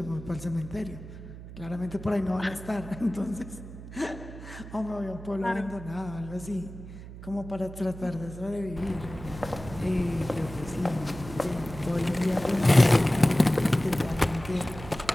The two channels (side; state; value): right; noise; hum, 13 dB below the sound